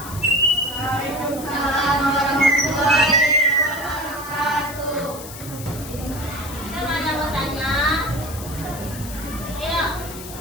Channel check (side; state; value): left; noise; hiss, 13 dB below the sound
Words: Waalaikumsalam warahmatullahi wabarakatuh. Kan ada mau tanya? Yuk.